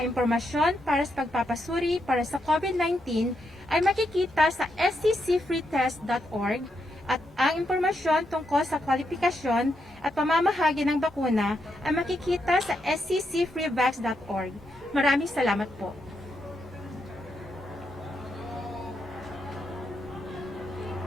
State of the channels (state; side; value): normal; both; correlation 0.82